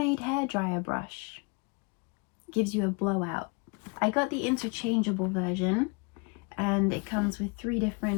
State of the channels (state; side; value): quieter; right; 31.4 dB